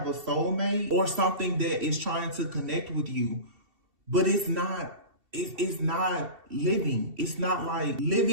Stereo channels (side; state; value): left; late; 2.7 ms